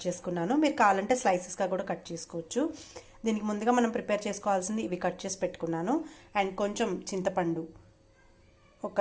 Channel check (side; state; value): both; identical; correlation 1.00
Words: చేసుకున్నాను. మీరు కావాలంటే స్లైసెస్గా కూడా కట్ చేసుకోవచ్చు. దీనికి ముందుగా మనం ప్రిపేర్ చేసుకోవాల్సింది ఇవి కట్ చేసి పెట్టుకున్నాను. అండ్ కొంచెం చింతపండు,